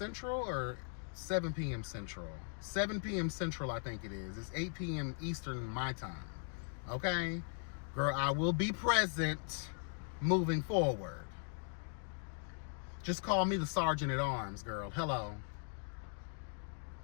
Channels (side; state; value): right; silent; 52 dB below the other